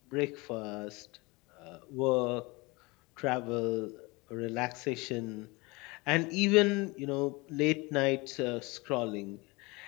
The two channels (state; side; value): quieter; right; 25.2 dB